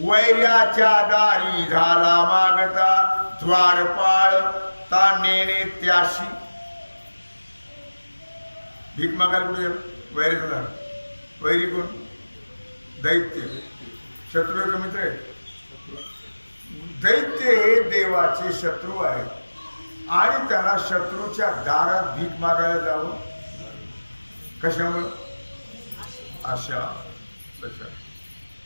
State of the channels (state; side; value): inverted; both; correlation -1.00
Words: दारी झाला मागता द्वारपाळ ता नेणे त्याशी. भीक मागायला कुठे वैरी झाला? वैरी कोण? दैत्य. शत्रू आहे का मित्र आहे? दैत्य हे देवाचे शत्रू आहेत आणि त्याला शत्रूच्या दारात भीक मागायला जावं. कशामुळं? आशा.